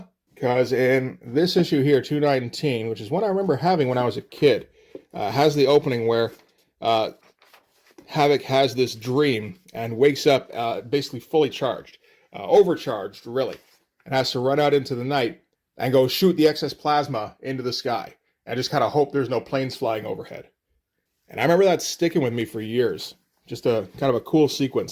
because in this issue here, 219, which is one I remember having when I was a kid, has the opening where Havoc has this dream and wakes up basically fully charged, overcharged really, and has to run out into the night and go shoot the excess plasma into the sky and just kind of hope there's no planes flying overhead. And I remember that sticking with me for years. Just a kind of a cool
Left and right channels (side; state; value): both; identical; correlation 1.00